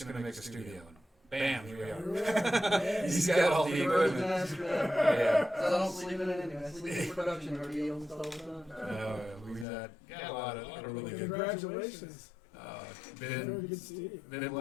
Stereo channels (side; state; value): right; drops out; at 9.7 s